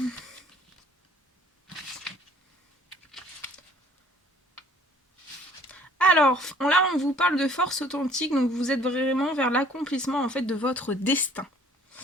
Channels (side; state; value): both; normal; correlation 0.56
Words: Alors, là, on vous parle de force authentique, donc vous êtes vraiment vers l'accomplissement, en fait, de votre destin.